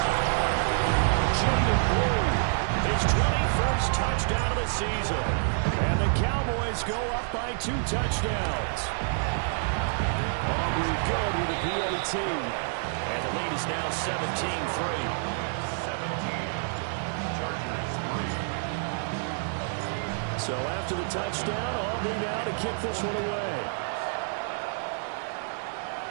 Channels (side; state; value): left; silent; digital silence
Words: Jaden Blue, his 21st touchdown of the season. And the Cowboys go up by 2 touchdowns. Aubrey good with a PAT. And the lead is now 17-3. 17. Chargers 3. So after the touchdown, Aubrey now to kick this one away.